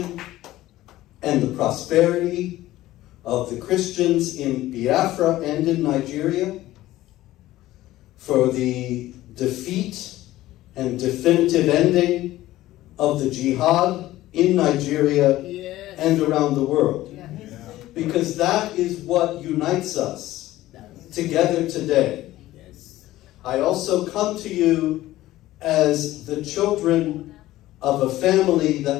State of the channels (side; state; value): right; quieter; 15.8 dB